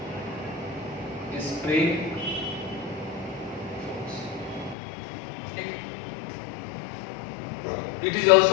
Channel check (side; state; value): right; drops out; at 4.8 s